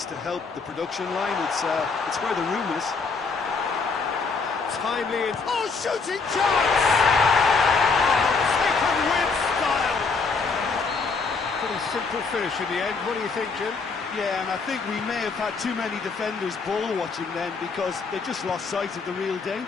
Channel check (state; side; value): quieter; right; 4.6 dB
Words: to help the production line. It's where the room is. Timely in... Oh, shooting chance! Oh, taken with style! Pretty simple finish in the end. What do you think, Jim? Yeah, and I think we may have had too many defenders ball watching then because they just lost sight of the real